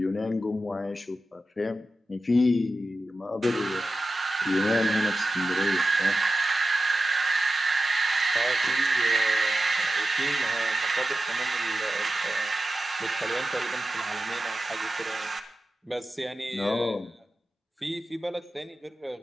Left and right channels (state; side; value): normal; both; correlation 0.92